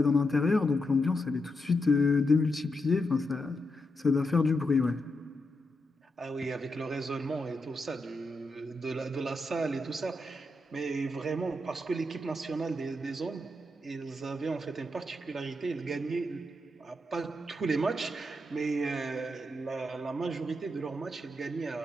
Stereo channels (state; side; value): normal; both; correlation 0.85